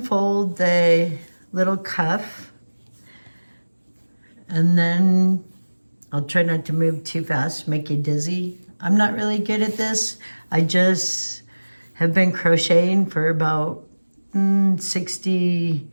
the little cuff, and then I'll try not to move too fast, make you dizzy. I'm not really good at this. I just have been crocheting for about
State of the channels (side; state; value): both; inverted; correlation -1.00